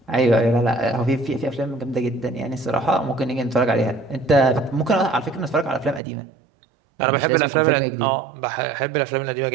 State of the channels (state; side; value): drops out; left; at 6.0 s